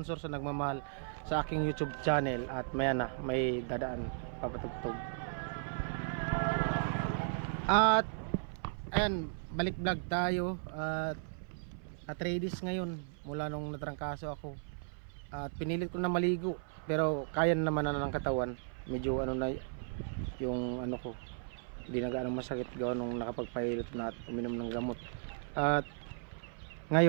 sa nagmamahal sa aking YouTube channel. At maya na, may dadaan papatugtog. At ayan, balik vlog tayo at ladies ngayon mula nung natrangkaso ako. At pinilit ko na maligo pero kaya naman na ng katawan. Medyo ano na yung ano ko, hindi na gaano masakit gawa nung nakapagpahilot na at uminom ng gamot. At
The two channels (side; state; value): left; silent; 54 dB below the other